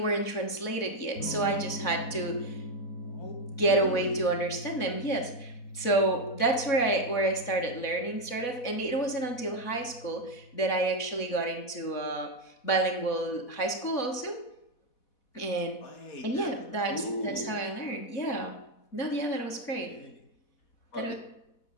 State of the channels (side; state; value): right; late; 4.1 ms